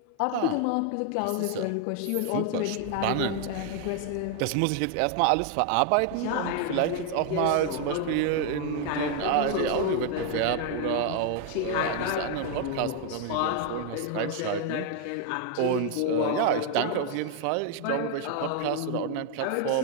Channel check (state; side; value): different; both; correlation 0.00